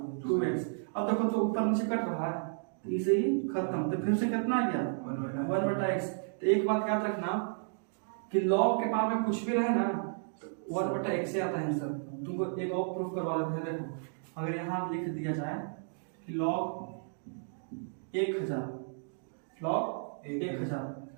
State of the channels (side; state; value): left; silent; digital silence